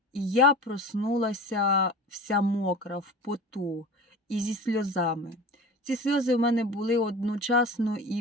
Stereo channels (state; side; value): normal; both; correlation 0.35